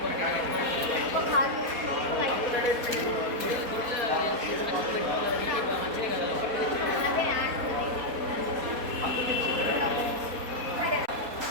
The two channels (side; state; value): left; late; 4.2 ms